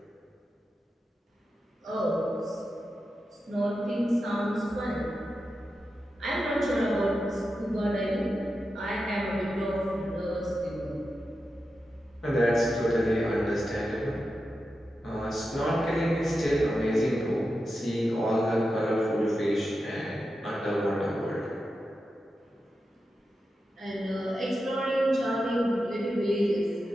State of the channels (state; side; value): normal; both; correlation 0.90